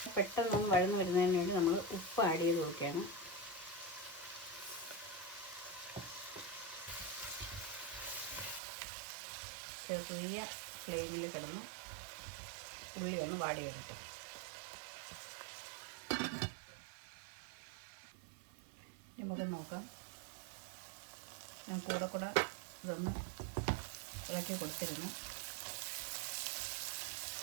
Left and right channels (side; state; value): left; drops out; at 8.6 s